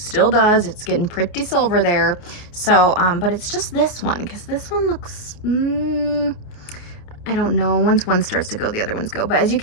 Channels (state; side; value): late; right; 28 ms